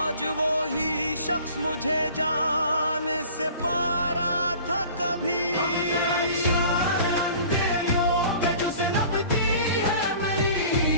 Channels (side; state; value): both; inverted; correlation -0.46